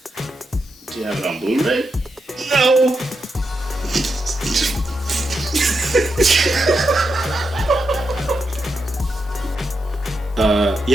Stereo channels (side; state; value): both; normal; correlation 0.85